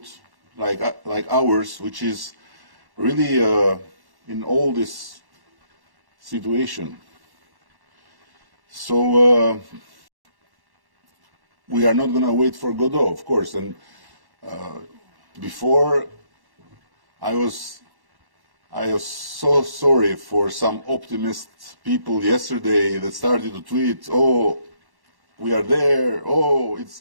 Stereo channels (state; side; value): late; left; 1.1 ms